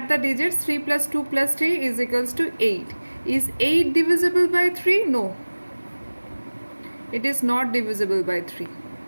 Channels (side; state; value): both; inverted; correlation -1.00